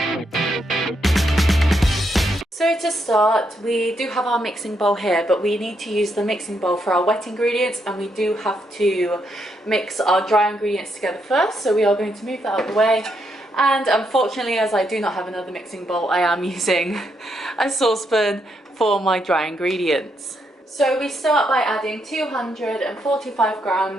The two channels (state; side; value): normal; both; correlation 0.78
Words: So to start, we do have our mixing bowl here, but we need to use the mixing bowl for our wet ingredients, and we do have to mix our dry ingredients together first. So we are going to move that out of the way. And unfortunately, as I do not have another mixing bowl, I am using a saucepan for my dry ingredients. So we start by adding 245